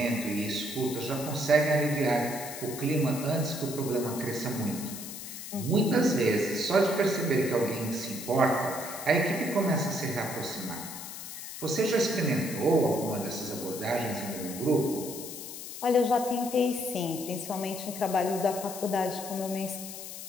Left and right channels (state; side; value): noise; left; hiss, 10 dB below the sound